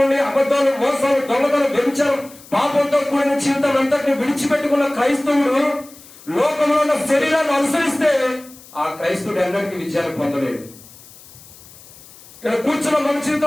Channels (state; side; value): noise; left; hiss, 21 dB below the sound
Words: అబద్ధాలు, మోసాలు, దొంగతనం, వ్యభిచారం, పాపంతో కూడిన జీవితం అంతటిని విడిచిపెట్టుకున్న క్రైస్తవుడు లోకంలో ఉన్న శరీరాన్ని అనుసరిస్తే ఆ క్రైస్తవుడు ఎన్నటికీ విజయాన్ని పొందలేడు. ఇక్కడ కూర్చున్న మన